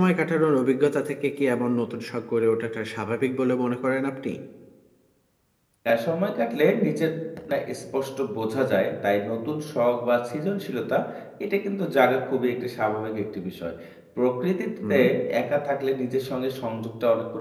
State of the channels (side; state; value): both; identical; correlation 1.00